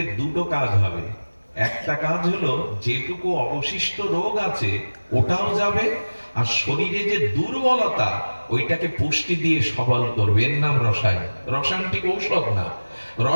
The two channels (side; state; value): both; inverted; correlation -1.00